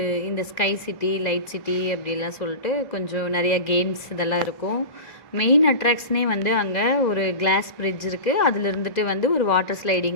இந்த ஸ்கை சிட்டி, லைட் சிட்டி அப்படிலாம் சொல்லிட்டு கொஞ்சம் நிறையா கேம்ஸ் இதெல்லாம் இருக்கும். மெயின் அட்ராக்ஷனே வந்து அங்கே ஒரு கிளாஸ் பிரிட்ஜ் இருக்குது. அதில் இருந்துட்டு வந்து ஒரு வாட்டர்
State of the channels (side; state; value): right; late; 2.0 ms